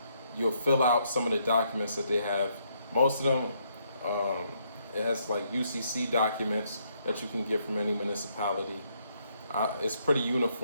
you'll fill out some of the documents that they have. Most of them, it has like UCC documents that you can get from any municipality. It's pretty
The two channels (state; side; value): inverted; both; correlation -0.73